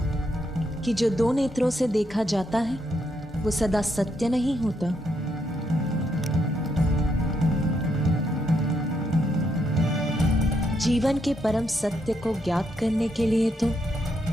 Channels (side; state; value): both; normal; correlation 0.77